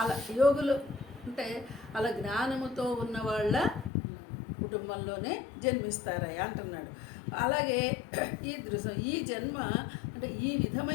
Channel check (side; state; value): right; drops out; at 3.9 s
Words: అలా యోగులు అంటే అలా జ్ఞానముతో ఉన్న వాళ్ళ కుటుంబంలోనే జన్మిస్తారయ్యా అంటున్నాడు. అలాగే ఈ జన్మ అంటే ఈ